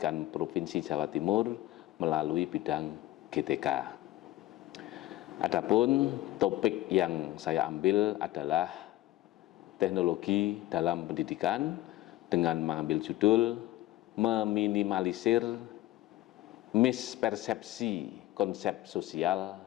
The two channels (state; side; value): quieter; right; 16.2 dB